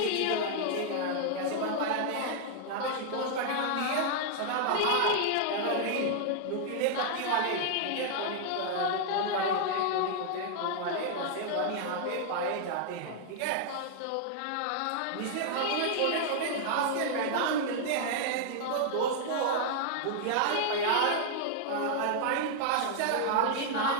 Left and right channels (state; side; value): different; both; correlation -0.01